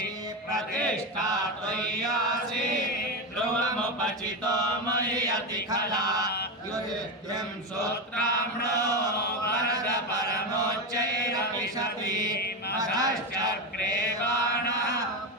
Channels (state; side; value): normal; both; correlation 0.14